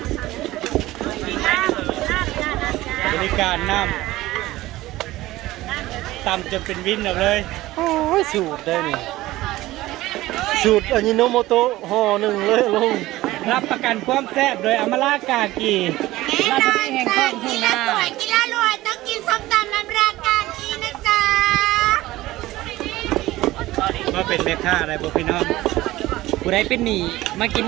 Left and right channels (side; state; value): left; quieter; 17.3 dB